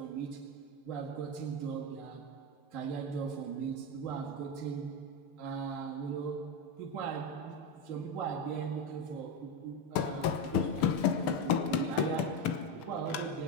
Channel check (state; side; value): late; right; 6.7 ms